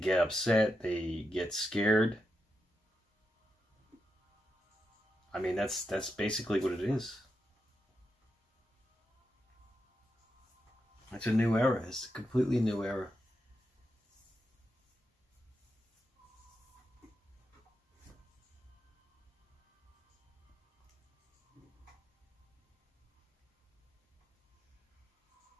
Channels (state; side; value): normal; both; correlation 0.86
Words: upset. They get scared. I mean, that's basically what it is. It's a new era. It's a completely new era.